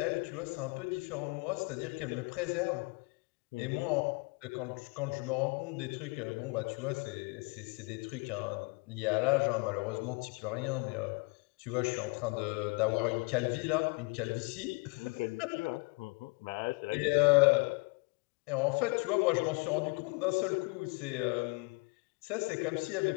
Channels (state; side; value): quieter; right; 30.1 dB